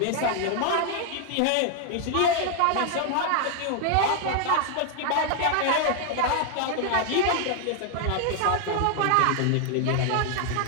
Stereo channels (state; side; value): different; both; correlation 0.00